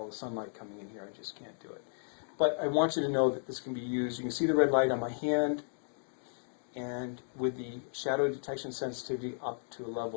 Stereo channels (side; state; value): right; silent; digital silence